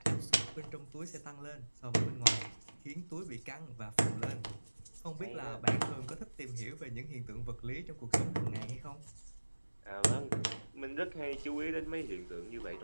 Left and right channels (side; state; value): both; inverted; correlation -1.00